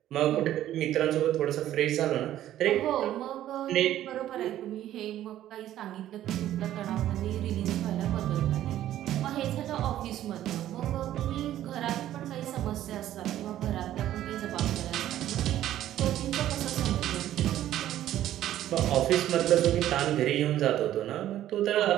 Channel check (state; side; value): quieter; left; 12.6 dB